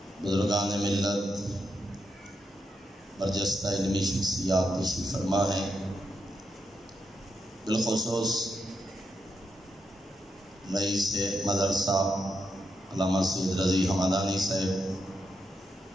بزرگان ملت، برجستہ علمی شخصیات تشریف فرما ہیں، بالخصوص رئیس مدرسہ علامہ سید رضی حمدانی صاحب،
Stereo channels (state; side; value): normal; both; correlation 0.83